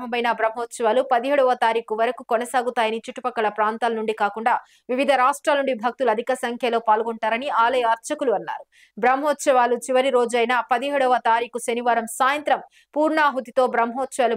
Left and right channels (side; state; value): both; identical; correlation 1.00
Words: బ్రహ్మోత్సవాలు 17వ తారీఖు వరకు కొనసాగుతాయని, చుట్టుపక్కల ప్రాంతాల నుండి కాకుండా వివిధ రాష్ట్రాల నుండి భక్తులు అధిక సంఖ్యలో పాల్గొంటారని ఆలయ అర్చకులు అన్నారు. బ్రహ్మోత్సవాలు చివరి రోజైన 17వ తారీఖు శనివారం సాయంత్రం పూర్ణాహుతితో బ్రహ్మోత్సవాలు